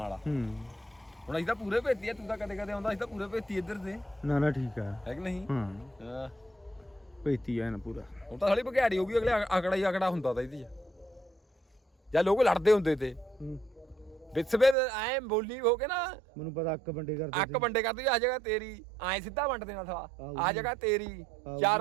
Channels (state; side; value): drops out; left; at 14.8 s